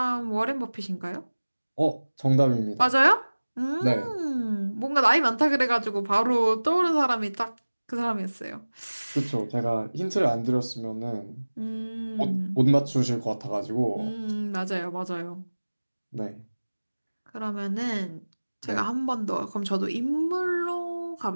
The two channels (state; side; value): inverted; both; correlation -1.00